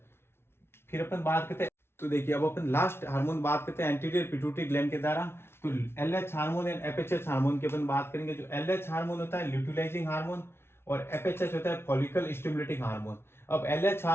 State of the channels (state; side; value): late; right; 0.12 ms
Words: फिर अपन बात करते हैं, तो देखिए अब अपन लास्ट हार्मोन बात करते हैं एंटीरियर पिट्यूटरी ग्लैंड के द्वारा, तो LH hormone and FHH hormone की अपन बात करेंगे। जो LH हार्मोन होता है ल्यूटिलाइजिंग हार्मोन और FHH होता है फॉलिकल स्टिमुलेटिंग हार्मोन। अब LH